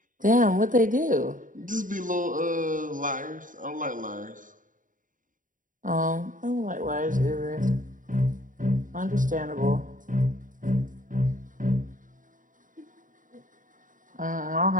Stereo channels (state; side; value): late; left; 0.38 ms